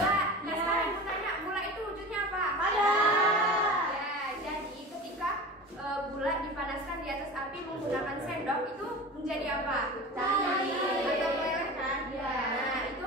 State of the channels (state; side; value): normal; both; correlation 0.33